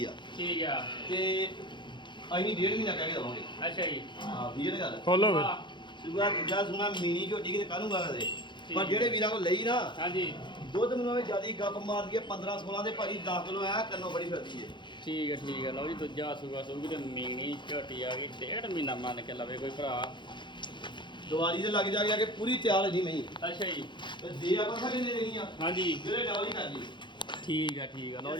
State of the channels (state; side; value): late; right; 0.23 ms